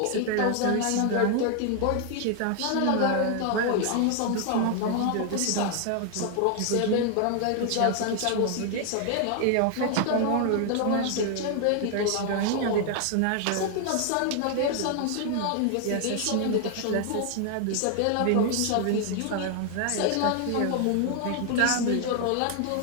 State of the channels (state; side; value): different; both; correlation 0.00